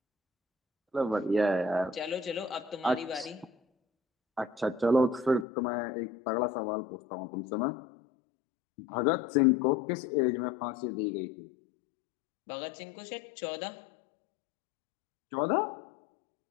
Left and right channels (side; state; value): right; drops out; at 5.5 s